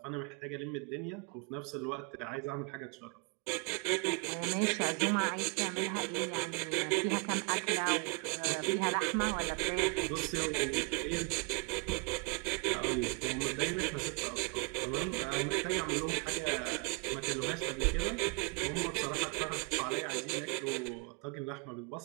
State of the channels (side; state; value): left; quieter; 29.8 dB